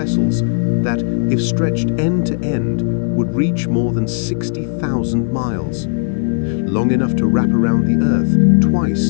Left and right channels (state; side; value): silent; right; digital silence